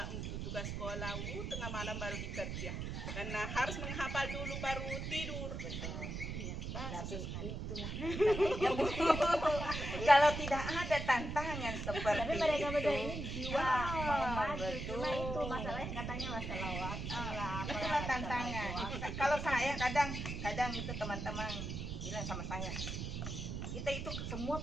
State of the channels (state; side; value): noise; right; rumble, 4 dB below the sound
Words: untuk tugas sekolah, tengah malam baru bekerja, karena harus menghafal dulu baru tidur. Tapi itulah kalau tidak ada tantangan seperti tapi mereka itu, ini jiwa mau maju, cuma itu masalahnya katanya masalah waktu lah. Itulah tantangan. Kalau saya kadang itu teman-teman bilang sama saya, kita itu semua